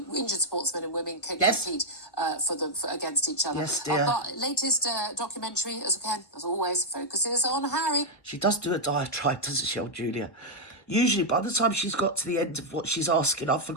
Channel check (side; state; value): right; late; 1.3 ms